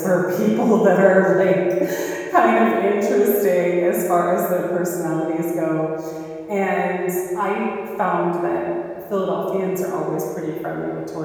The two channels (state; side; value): identical; both; correlation 1.00